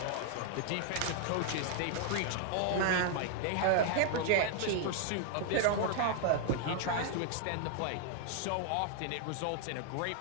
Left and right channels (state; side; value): different; both; correlation 0.00